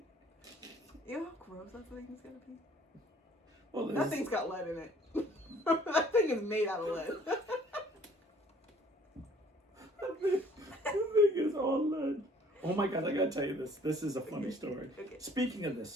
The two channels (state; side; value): normal; both; correlation 0.57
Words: You know how gross that thing is gonna be? Well, that thing's got lead in it. That thing is made out of lead. That thing is all lead. Oh my God, I gotta tell you this. This is a funny story. Okay. Speaking of this,